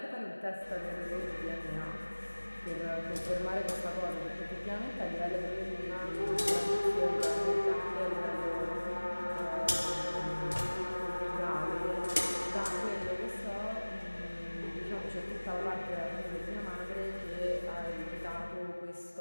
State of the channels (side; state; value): both; inverted; correlation -1.00